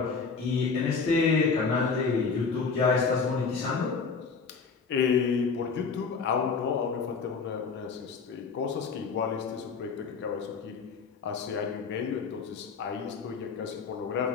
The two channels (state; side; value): quieter; right; 5.1 dB